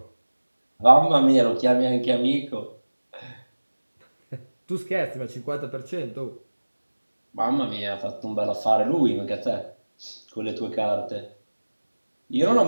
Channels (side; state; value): both; inverted; correlation -1.00